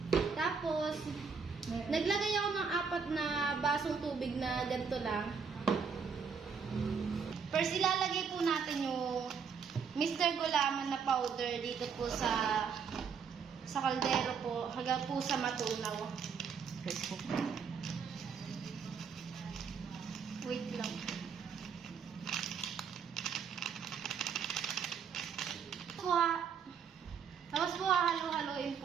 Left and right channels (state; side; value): quieter; left; 6.2 dB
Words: Tapos, naglagay ako ng 4 na basong tubig na ganito lang. First, ilalagay po natin yung Mr. Gulaman na powder dito po sa kaldero po, hanggang po sa matunaw. Wait lang. Tapos po halo-haloin